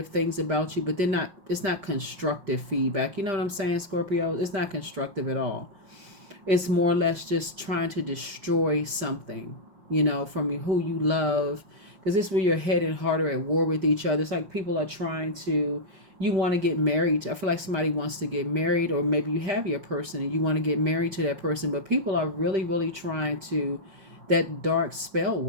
things about you, but it's not constructive feedback. You know what I'm saying, Scorpio? It's not constructive at all. It's more or less just trying to destroy something, from you, who you love. Because this is where your head and heart are at war with each other. It's like people are trying to, you want to get married. I feel like somebody wants to get married, or maybe you have your person and you want to get married to that person, but people are really, really trying to that dark spell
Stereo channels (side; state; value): left; late; 5.1 ms